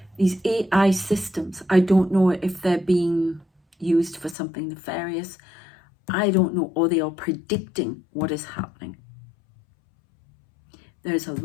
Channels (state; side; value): drops out; right; at 4.4 s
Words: These AI systems, I don't know if they're being used for something nefarious. I don't know, or they are predicting what is happening. There's a